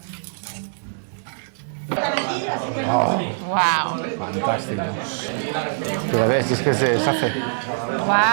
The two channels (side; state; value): left; silent; digital silence